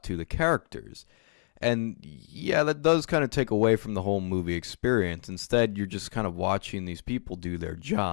to the characters. And yeah, that does kind of take away from the whole movie experience. Instead, you're just kind of watching these people do their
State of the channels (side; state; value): right; silent; digital silence